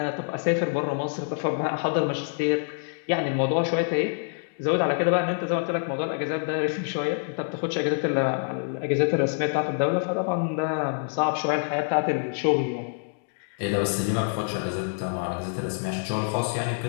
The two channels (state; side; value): silent; right; digital silence